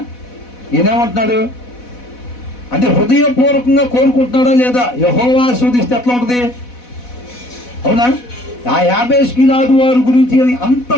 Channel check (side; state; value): right; late; 4.1 ms